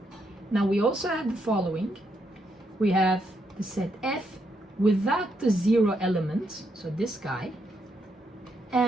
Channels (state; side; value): normal; both; correlation 0.78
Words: Now we also have the following. We have the set F without the 0 element, so this guy,